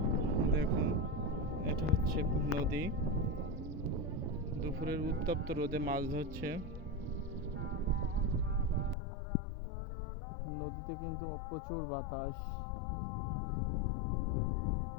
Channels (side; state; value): right; drops out; at 9.0 s